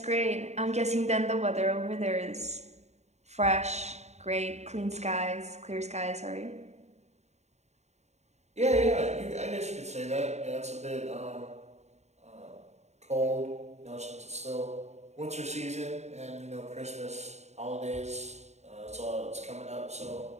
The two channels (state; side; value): late; left; 0.32 ms